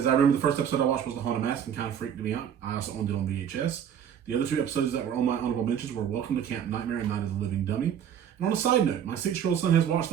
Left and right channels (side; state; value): left; quieter; 8.8 dB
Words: I remember the first episode I watched was The Haunted Mask and kind of freaked me out. I also owned it on VHS. The other 2 episodes that were on my honorable mentions were Welcome to Camp Nightmare and Night of the Living Dummy. And on a side note, my 6-year-old son has watched